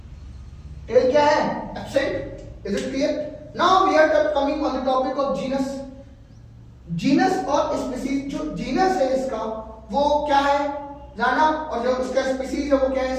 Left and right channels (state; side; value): identical; both; correlation 1.00